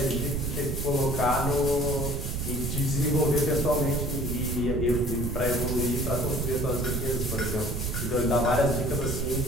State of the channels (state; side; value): noise; right; rumble, 2 dB below the sound